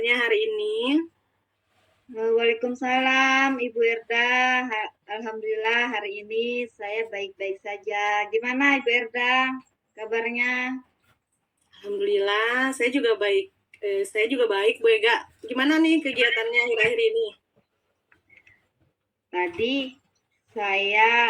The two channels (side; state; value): both; identical; correlation 1.00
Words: hari ini? Waalaikumsalam Ibu Erda. Alhamdulillah hari ini saya baik-baik saja. Gimana Ibu Erda kabarnya? Alhamdulillah, saya juga baik. Saya juga baik Bu Ega. Gimana nih kegiatannya akhir-akhir ini? Tadi